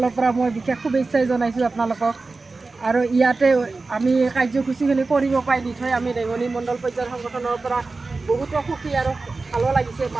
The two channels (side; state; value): left; quieter; 3.7 dB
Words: পৰা মই বিশেষ শুভেচ্ছাই জনাইছোঁ আপোনালোকক। আৰু ইয়াতে আমি কাৰ্যসূচীখিনি কৰিব পাই নিশ্চয় আমি ৰেঙনি মণ্ডল পৰ্যায়ৰ সংগঠনৰ পৰা বহুতো সুখী আৰু ভালো লাগিছে।